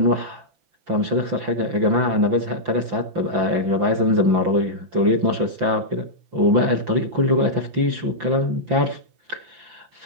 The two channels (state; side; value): late; left; 5.8 ms